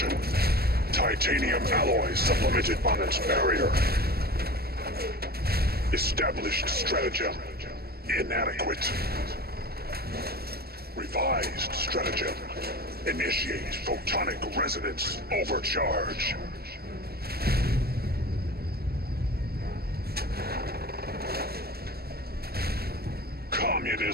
titanium alloy supplemented by its barrier. Established stratagem: inadequate. Revised stratagem: initiate photonic resonance overcharge.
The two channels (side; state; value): left; late; 0.45 ms